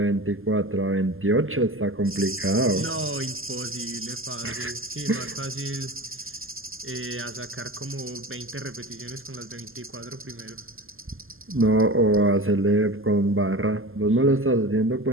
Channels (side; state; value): left; late; 0.60 ms